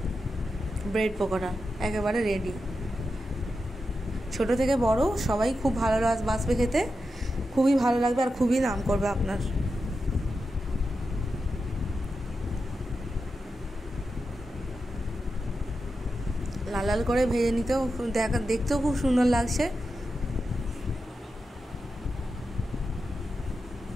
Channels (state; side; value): normal; both; correlation 0.89